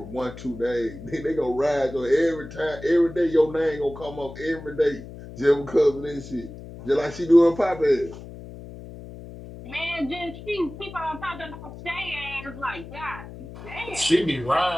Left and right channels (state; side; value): noise; left; hum, 14 dB below the sound